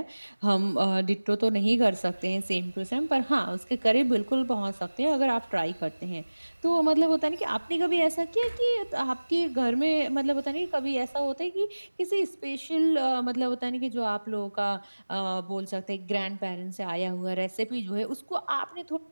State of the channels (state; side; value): inverted; both; correlation -1.00